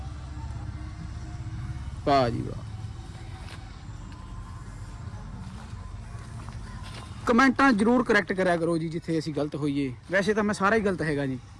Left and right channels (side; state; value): both; identical; correlation 1.00